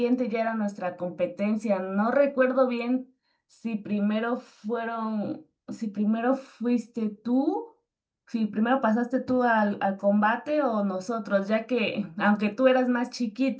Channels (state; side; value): identical; both; correlation 1.00